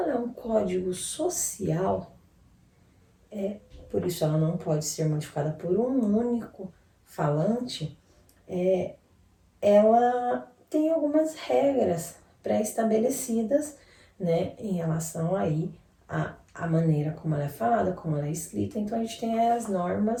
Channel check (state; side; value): identical; both; correlation 1.00